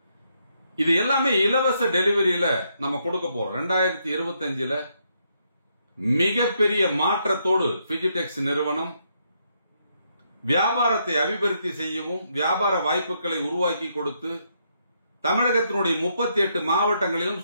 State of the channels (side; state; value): both; inverted; correlation -0.76